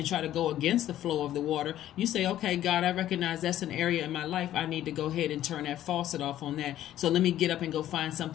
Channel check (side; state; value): right; quieter; 12.6 dB